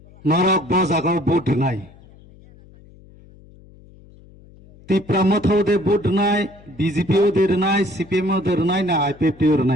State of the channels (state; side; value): noise; left; hum, 24 dB below the sound